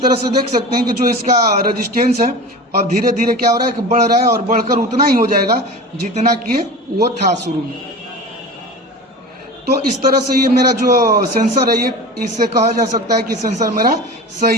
तरह से देख सकते हैं कि जो इसका रेजिस्टेंस है और धीरे धीरे क्या हो रहा है कि बढ़ रहा है और बढ़कर उतना ही हो जाएगा जितना कि वो था शुरू में। तो इस तरह से ये मेरा जो सेंसर है, ये इससे कहा जा सकता है कि सेंसर मेरा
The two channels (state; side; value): normal; both; correlation 0.33